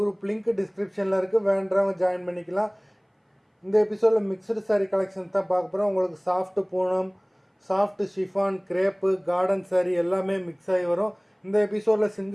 லிங்க் டிஸ்கிரிப்ஷனில் இருக்குது, வேண்டவங்க ஜாயின் பண்ணிக்கலாம். இந்த எபிசோடில் மிக்சடு சாரீ கலெக்ஷன்ஸ் தான் பார்க்க போகிறோம். உங்களுக்கு சாஃப்ட் Poonam, soft chiffon, crepe, garden sari எல்லாமே மிக்ஸ் ஆகி வரும். இந்த எபிசோடில்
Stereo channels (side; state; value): both; identical; correlation 1.00